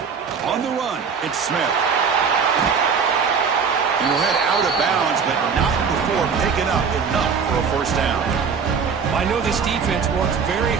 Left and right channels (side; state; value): left; quieter; 6.0 dB